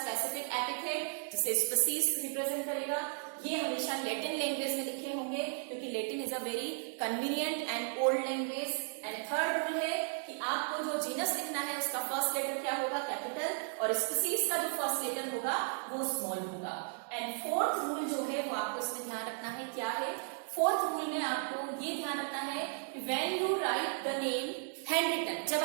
एपिथेट जिसे स्पीसीज रिप्रेजेंट करेगा। ये हमेशा लैटिन लैंग्वेज में लिखे होंगे क्योंकि Latin is a very convenient and old language. And third rule है कि आपको जो जीनस लिखना है उसका फर्स्ट लेटर क्या होगा, कैपिटल, और स्पीसीज का जो फर्स्ट लेटर होगा वो स्मॉल होगा। एंड 4th रूल जो है वो आपको इसमें ध्यान रखना है, क्या है 4th रूल में आपको ये ध्यान रखना है कि when you write the name handwritten, जब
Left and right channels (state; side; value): silent; left; 54 dB below the other